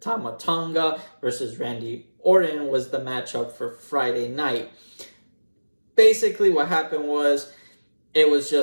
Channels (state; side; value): inverted; both; correlation -1.00